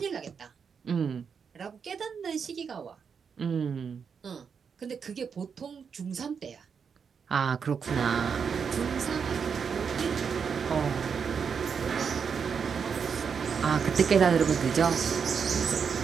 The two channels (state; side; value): quieter; left; 6.4 dB